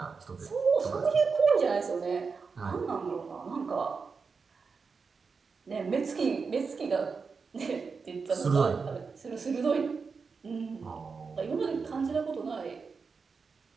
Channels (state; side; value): quieter; left; 5.1 dB